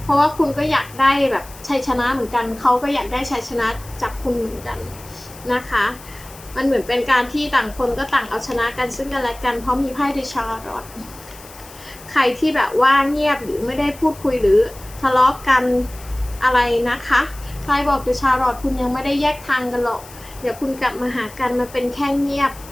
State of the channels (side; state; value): left; noise; hiss, 19 dB below the sound